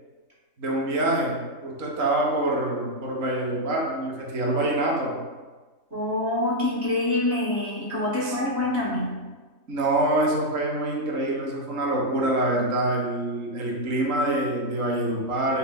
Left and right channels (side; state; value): left; late; 3.2 ms